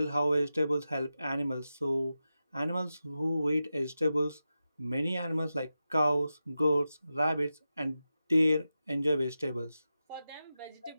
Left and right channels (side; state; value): both; inverted; correlation -0.91